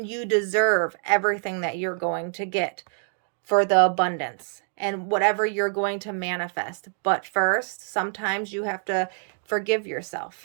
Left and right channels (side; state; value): left; silent; 61 dB below the other